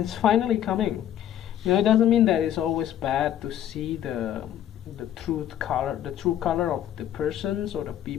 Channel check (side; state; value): right; quieter; 11.1 dB